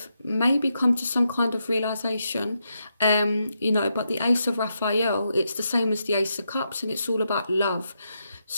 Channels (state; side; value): inverted; both; correlation -0.83